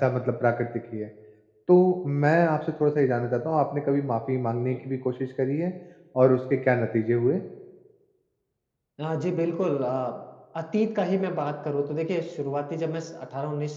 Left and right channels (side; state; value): both; identical; correlation 1.00